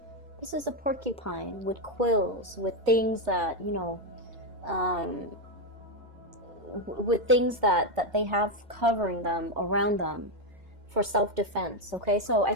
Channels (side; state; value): left; late; 2.1 ms